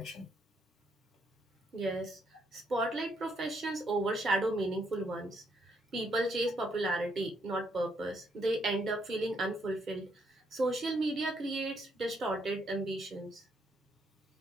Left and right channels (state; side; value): normal; both; correlation 0.73